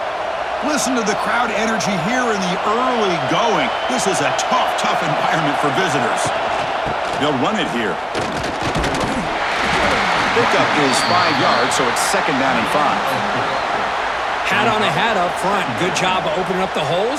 Listen to the crowd energy here in the early going. This is a tough environment for visitors. They'll run it here. Pickup is 5 yards, so it's second down and 5. Hat on a hat up front. Good job of opening up the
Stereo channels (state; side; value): identical; both; correlation 1.00